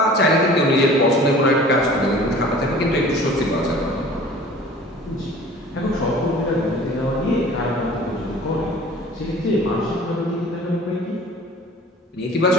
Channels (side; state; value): both; normal; correlation 0.46